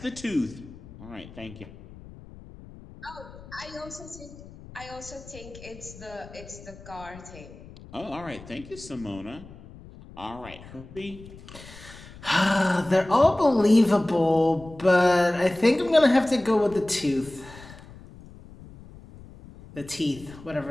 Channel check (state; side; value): noise; left; rumble, 18 dB below the sound